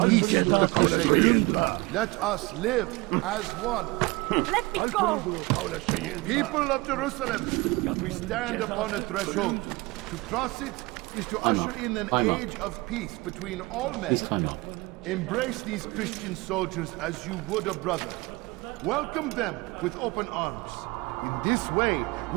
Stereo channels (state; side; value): quieter; left; 23.6 dB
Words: peace with the Crusaders. Let us live as one. Let me go! People of Jerusalem, we stand upon a threshold. To cross it is to usher in an age of peace between all men. Embrace these Christian soldiers as you would a brother. Welcome them with open arms. In this way,